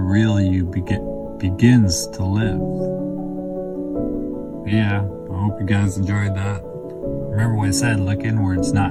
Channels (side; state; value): both; identical; correlation 1.00